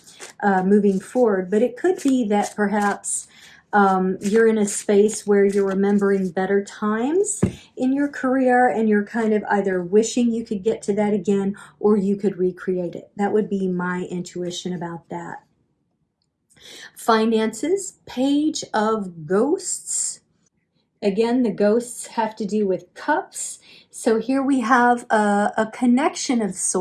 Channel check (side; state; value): both; identical; correlation 1.00